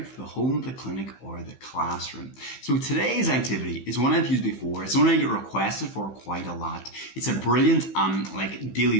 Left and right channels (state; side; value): late; right; 15 ms